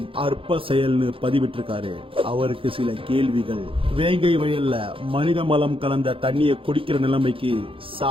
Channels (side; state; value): left; late; 0.26 ms